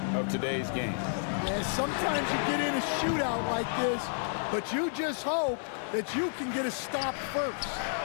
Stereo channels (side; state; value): right; silent; digital silence